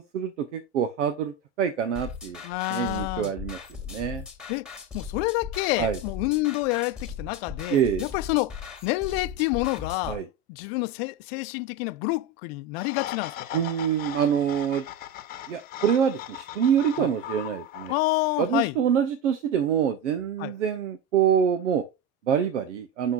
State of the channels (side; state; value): both; normal; correlation 0.18